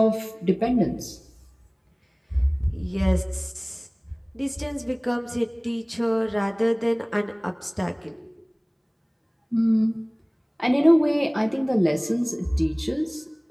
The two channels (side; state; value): both; identical; correlation 1.00